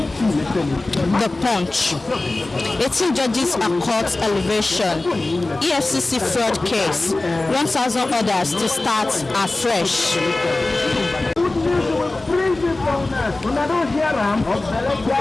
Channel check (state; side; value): quieter; right; 3.0 dB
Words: The Punch. 18 judges are court elevation. EFCC fraud case. 1,000 orders to start afresh.